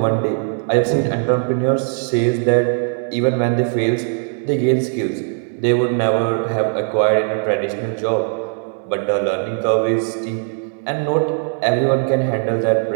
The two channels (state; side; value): silent; left; 63 dB below the other